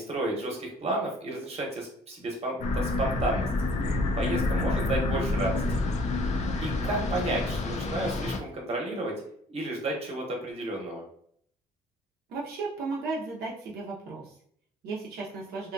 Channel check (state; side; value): normal; both; correlation 0.55